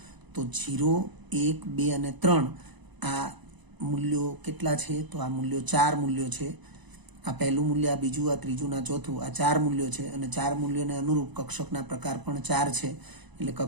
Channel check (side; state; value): left; late; 1.0 ms